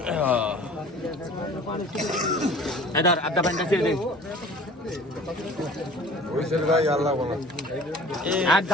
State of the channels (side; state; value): both; normal; correlation 0.45